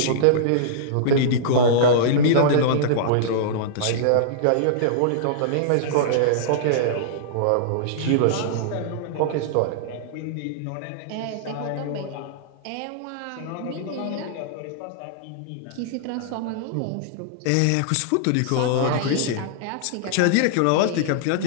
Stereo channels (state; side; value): different; both; correlation -0.02